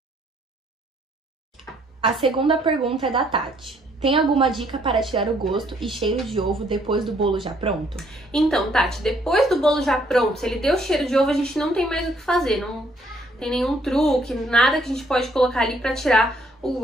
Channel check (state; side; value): normal; both; correlation 0.67